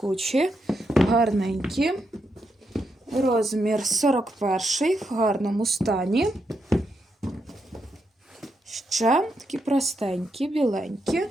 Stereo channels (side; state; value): both; normal; correlation 0.82